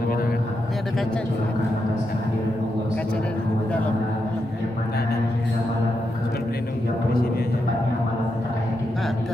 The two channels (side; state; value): both; normal; correlation 0.84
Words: kamera kan? Ini ada kaca di kaca dari dalam yang mana hingga malam pelindung di ke-30 sini aja. tepatnya malam terakhir di